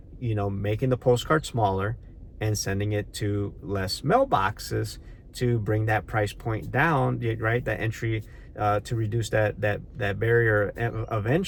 making the postcard smaller and sending it to less mailboxes to bring that price point down, right? That entry, to reduce that barrier of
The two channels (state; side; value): identical; both; correlation 1.00